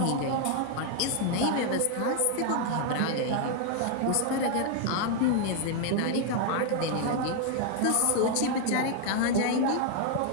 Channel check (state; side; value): different; both; correlation 0.00